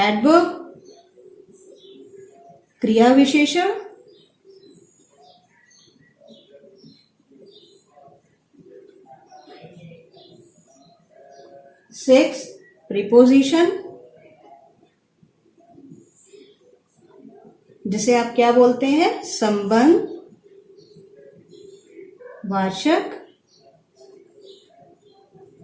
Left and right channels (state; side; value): identical; both; correlation 1.00